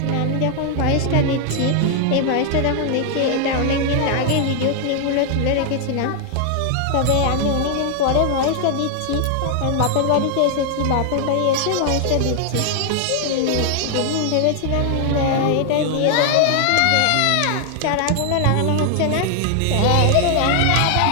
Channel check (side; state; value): both; different; correlation 0.00